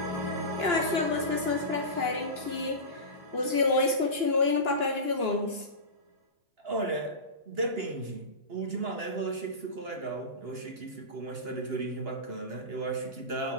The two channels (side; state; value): left; late; 2.9 ms